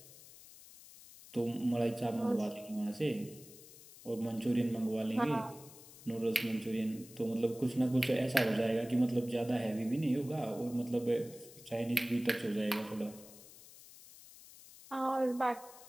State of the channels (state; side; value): noise; left; hiss, 19 dB below the sound